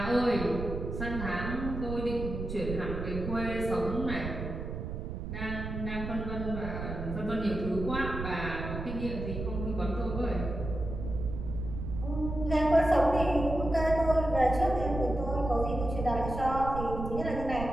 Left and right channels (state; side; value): noise; right; rumble, 6 dB below the sound